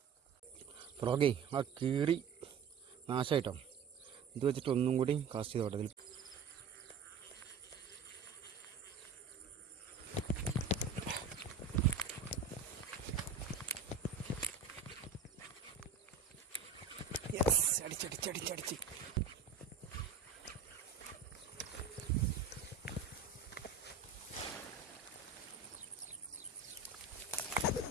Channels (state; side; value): quieter; left; 5.6 dB